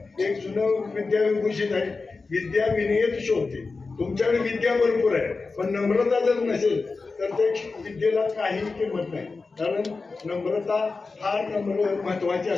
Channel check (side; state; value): right; quieter; 4.1 dB